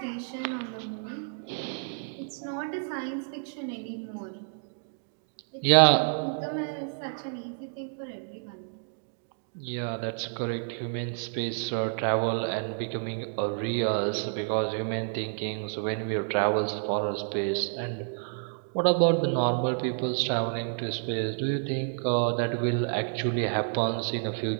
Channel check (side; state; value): left; silent; digital silence